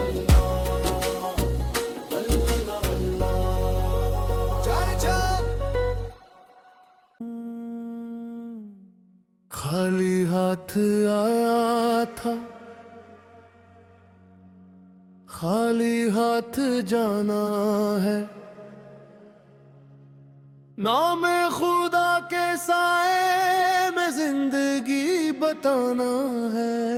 खाली हाथ आया था, खाली हाथ जाना है, नाम खुदा के साए में जिंदगी बताना है।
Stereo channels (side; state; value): both; identical; correlation 1.00